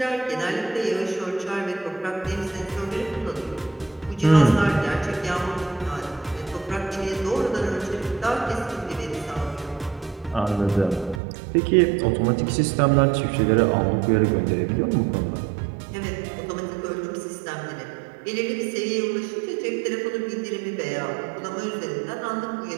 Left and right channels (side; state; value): left; drops out; at 11.2 s